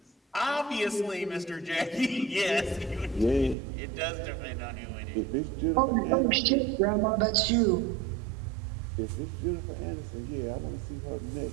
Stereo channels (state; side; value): drops out; left; at 3.6 s